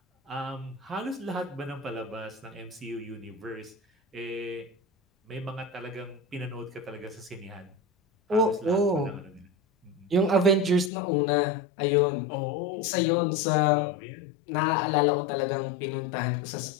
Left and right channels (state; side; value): drops out; right; at 10.9 s